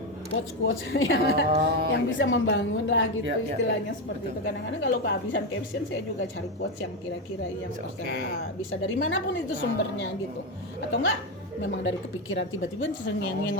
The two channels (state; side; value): normal; both; correlation 0.11